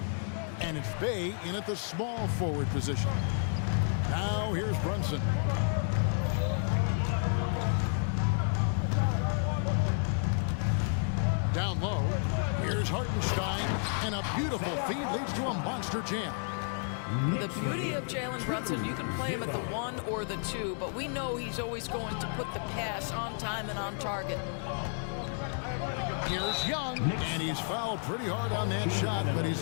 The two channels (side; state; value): right; silent; 57 dB below the other